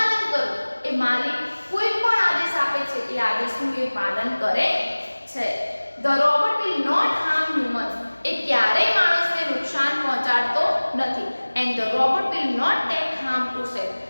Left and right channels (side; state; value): both; inverted; correlation -1.00